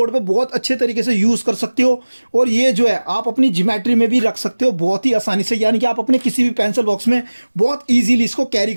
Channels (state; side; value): inverted; both; correlation -1.00